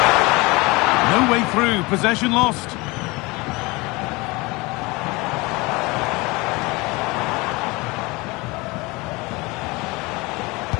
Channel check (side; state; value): right; quieter; 24.2 dB